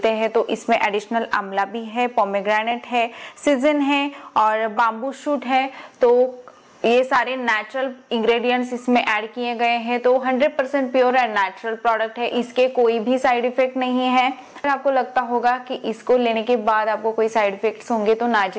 हैं। तो इसमें एडिशनल आंवला भी है, पोमेग्रेनेट है, सीजन है और बाम्बू शूट है। तो ये सारे नेचुरल इंग्रेडिएंट्स इसमें ऐड किए गए हैं। तो 100% प्योर एंड नेचुरल प्रोडक्ट है। इसके कोई भी साइड इफेक्ट नहीं है। अगर आपको लगता होगा कि इसको लेने के बाद आपको कोई साइड इफेक्ट्स होंगे, तो ना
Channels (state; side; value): identical; both; correlation 1.00